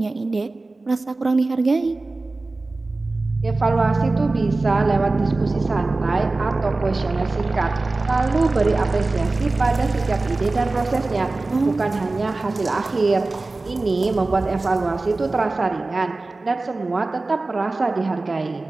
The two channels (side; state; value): left; quieter; 3.3 dB